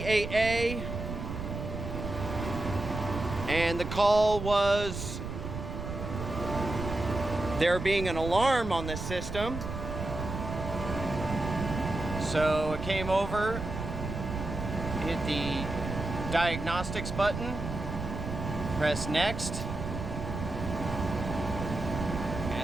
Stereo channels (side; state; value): right; noise; rumble, 6 dB below the sound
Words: and the call was there being an alarm on the system. So I came over, hit the diagnostics button, press next,